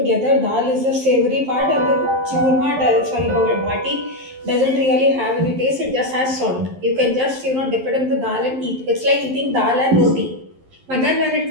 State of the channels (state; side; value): late; left; 11 ms